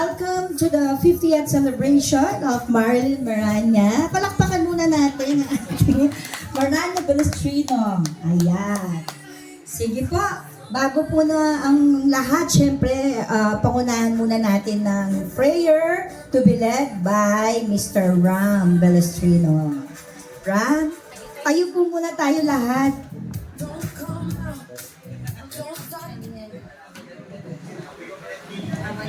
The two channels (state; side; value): identical; both; correlation 1.00